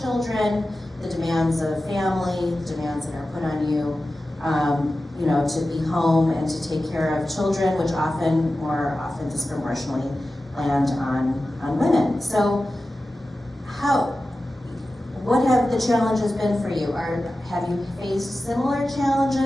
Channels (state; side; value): normal; both; correlation 0.94